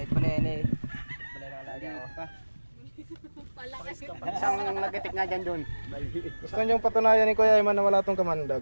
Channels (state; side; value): inverted; both; correlation -1.00